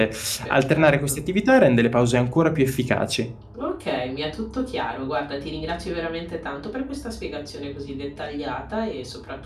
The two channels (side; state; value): both; identical; correlation 1.00